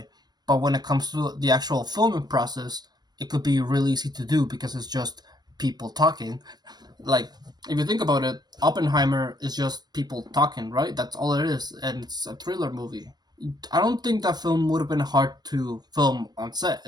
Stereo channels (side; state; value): left; late; 0.20 ms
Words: But when it comes to the actual filming process, it could be really easy to do because it's just people talking. Like if you think about it, Oppenheimer is just people talking, right? That's all it is, and it's a thriller movie. I don't think that film would have been hard to film on set.